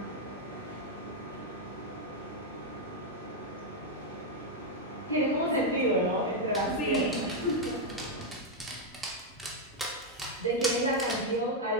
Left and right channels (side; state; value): both; normal; correlation 0.00